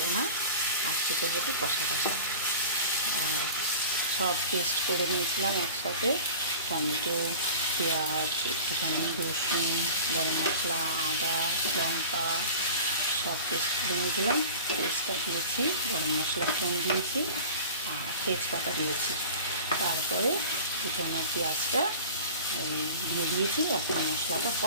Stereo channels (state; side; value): inverted; both; correlation -0.38